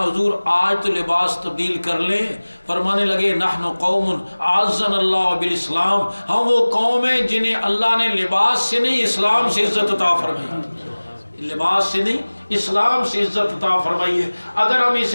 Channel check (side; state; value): both; inverted; correlation -1.00